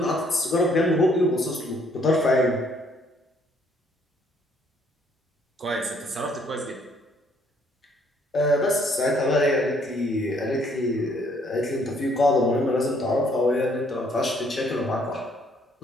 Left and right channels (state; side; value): normal; both; correlation 0.65